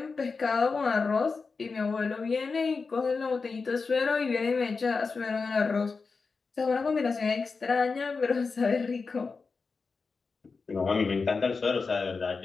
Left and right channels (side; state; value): right; quieter; 4.6 dB